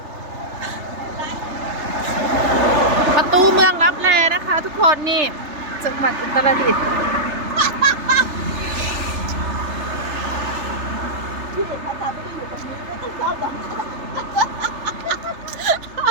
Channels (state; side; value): late; left; 3.3 ms